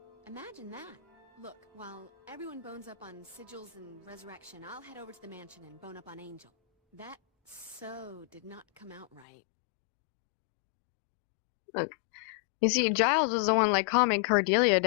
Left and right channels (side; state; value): right; drops out; at 9.2 s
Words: Imagine that. Look, while everyone bones up on sigils and resurrection, I'll head over to the mansion and bone up on Angel. That so did not come out right. Look, you see, Giles was the one calming Cordelia